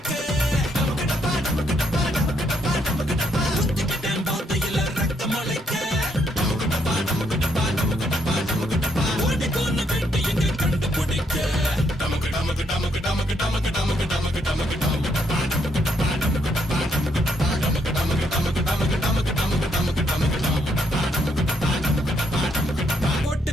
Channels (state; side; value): normal; both; correlation 0.74